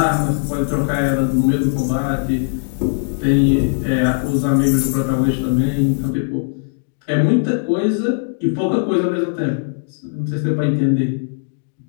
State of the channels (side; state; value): right; silent; digital silence